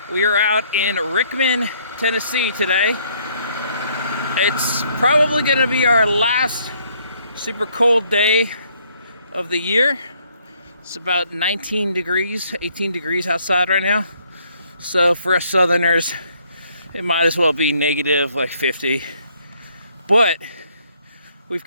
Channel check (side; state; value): both; inverted; correlation -0.67